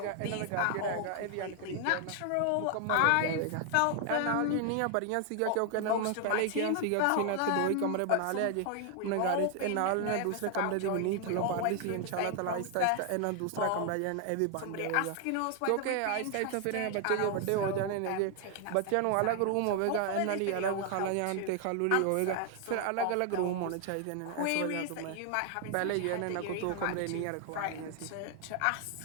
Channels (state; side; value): different; both; correlation 0.00